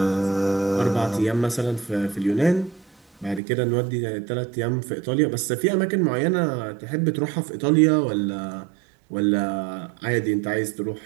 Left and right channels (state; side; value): drops out; left; at 3.4 s